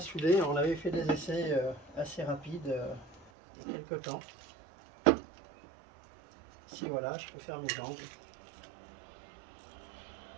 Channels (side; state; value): left; drops out; at 3.3 s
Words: souder, on avait fait des essais assez rapides il y a quelques temps. Ici, voilà, je peux faire mes angles.